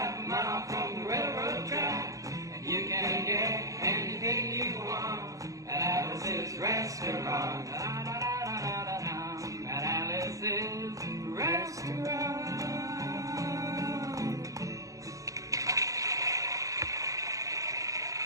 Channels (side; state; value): left; late; 0.16 ms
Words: a mile from the railroad track. And you can get anything you want at Alice's restaurant. At Alice's restaurant.